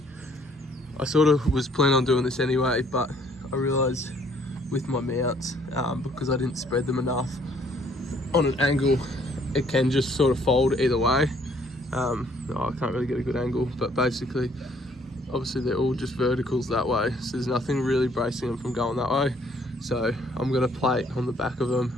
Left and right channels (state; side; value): normal; both; correlation 0.63